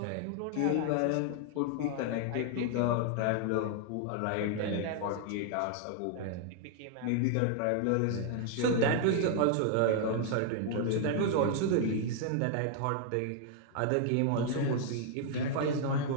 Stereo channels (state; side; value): different; both; correlation 0.00